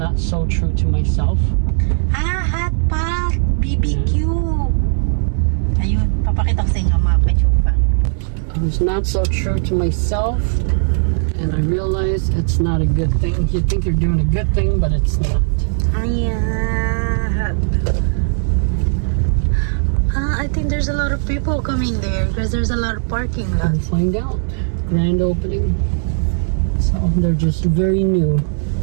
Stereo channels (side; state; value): left; silent; digital silence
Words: so true to myself. Hot pot! BBQ! Ayun, papakita ko sa inyo mga kachupa. I was not so true to myself, and I realized it's not a good thing. You think you're doing a good thing, but it's not. Ayan. I think there's a lot of people coming there because there's a lot of parking lot. We'll find out. Grand opening. So they're just very new.